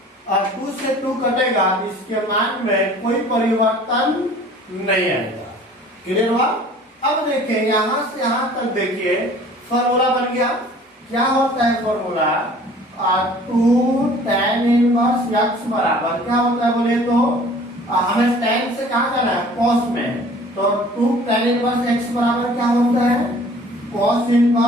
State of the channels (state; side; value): normal; both; correlation 0.50